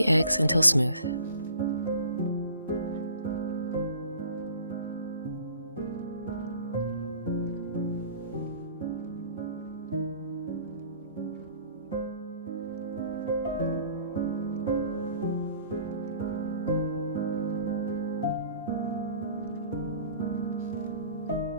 eggs until smooth.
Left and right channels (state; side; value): inverted; both; correlation -0.49